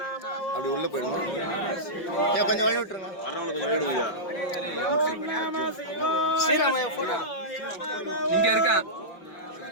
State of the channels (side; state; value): right; late; 5.9 ms